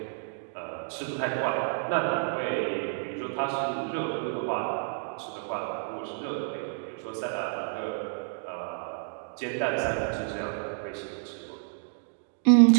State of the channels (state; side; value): silent; left; digital silence